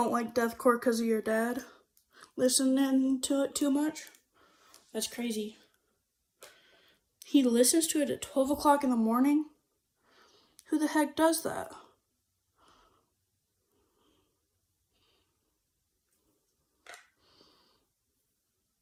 like deathcore because of your dad listening to it too much? That's crazy. He listens to it at 12 o'clock in the morning? Who the heck does that?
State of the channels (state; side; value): identical; both; correlation 1.00